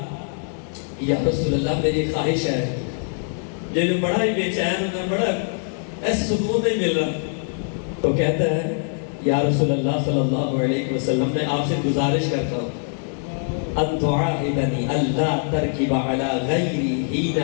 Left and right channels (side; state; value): right; silent; 58 dB below the other